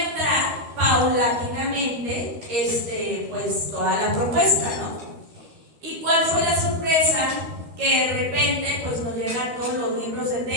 paulatinamente pues toda la propuesta, ¿no? ¿Y cuál fue la sorpresa? Que de repente pues nos llegan todos los libros de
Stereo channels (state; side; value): late; left; 13 ms